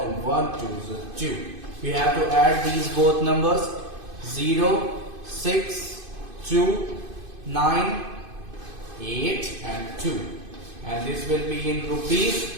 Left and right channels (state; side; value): late; left; 2.5 ms